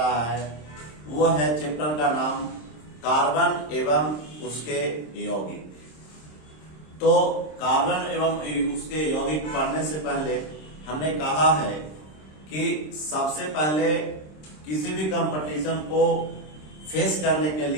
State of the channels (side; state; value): right; late; 26 ms